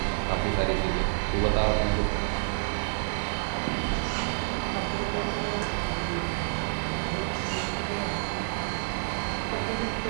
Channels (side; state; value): left; silent; digital silence